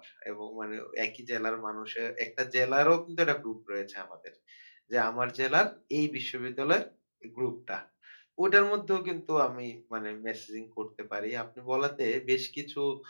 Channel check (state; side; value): inverted; both; correlation -1.00